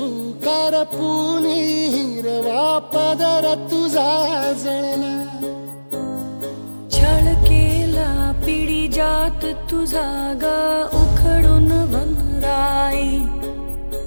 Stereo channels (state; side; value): inverted; both; correlation -1.00